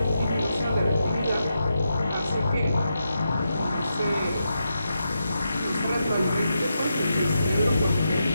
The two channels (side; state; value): both; inverted; correlation -0.85